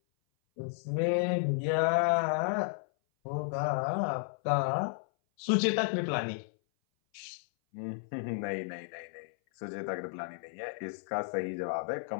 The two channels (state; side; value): silent; right; 56 dB below the other